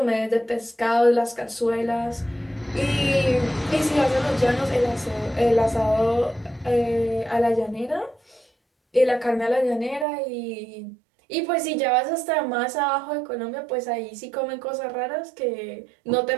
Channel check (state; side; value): drops out; left; at 10.1 s